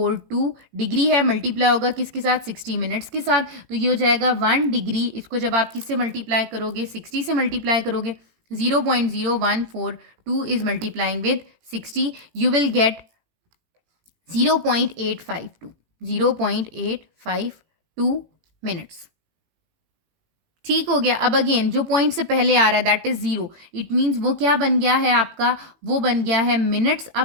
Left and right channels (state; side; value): late; left; 18 ms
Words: डिग्री है, मल्टीप्लाई होगा किसके साथ, 60 मिनट्स के साथ। तो ये हो जाएगा 1 डिग्री, इसको जब आप किससे मल्टीप्लाई करोगे, 60 से मल्टीप्लाई करोगे, 0.0142 is multiplying with 60, you will gate 0.852 minutes. ठीक हो गया। अब अगेन जो पॉइंट से पहले आ रहा है दैट इज 0, इट मीन्स वो क्या बन गया है आपका, वो बन गया है मिनट्स।